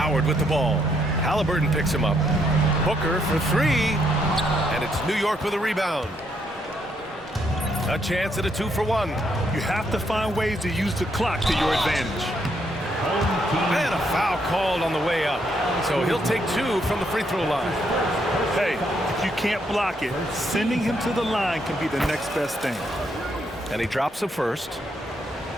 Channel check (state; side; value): normal; both; correlation 0.74